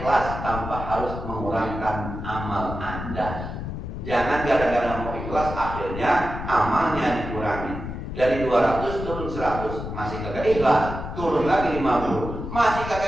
tanpa harus mengurangkan amal Anda. Jangan gara-gara mau ikhlas akhirnya amalnya dikurangi. Dari 200 turun 100, masih kagak ikhlas. Turun lagi 50, masih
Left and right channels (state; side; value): noise; left; rumble, 7 dB below the sound